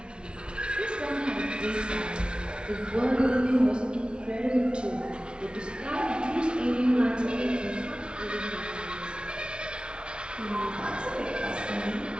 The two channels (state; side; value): late; left; 0.056 ms